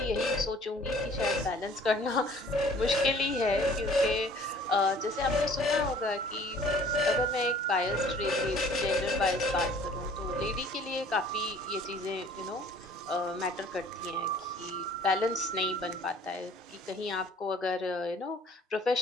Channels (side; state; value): both; normal; correlation 0.53